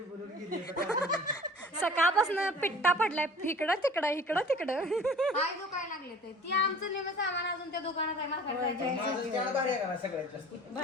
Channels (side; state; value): both; normal; correlation 0.45